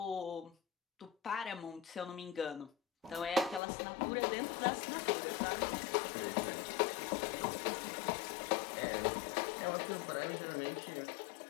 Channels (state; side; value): drops out; right; at 3.6 s